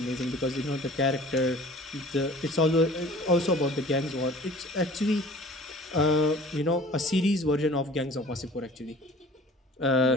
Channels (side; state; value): both; normal; correlation 0.46